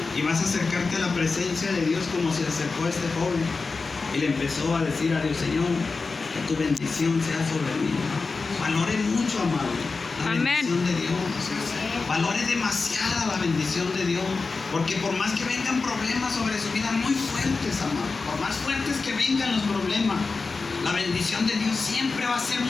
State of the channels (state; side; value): quieter; right; 4.2 dB